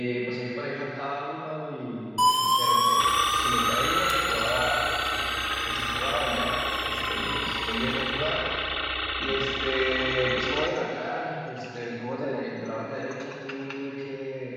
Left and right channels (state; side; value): identical; both; correlation 1.00